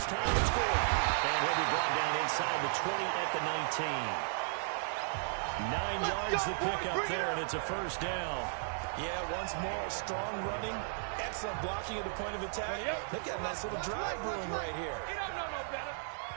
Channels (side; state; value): left; silent; digital silence